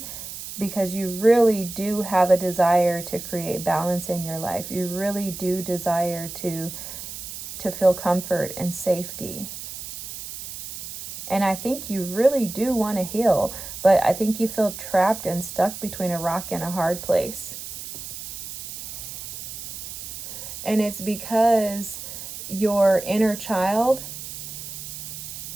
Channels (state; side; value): noise; right; hiss, 10 dB below the sound